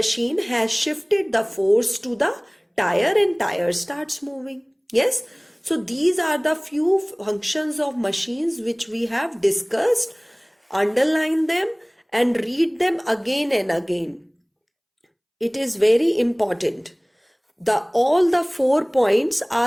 has shifted the force to the tyre and tyre starts moving. Yes. So these are the few functions of machines which we have discussed. Underline them and read them again and again. It is very important. All the 4 points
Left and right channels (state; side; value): identical; both; correlation 1.00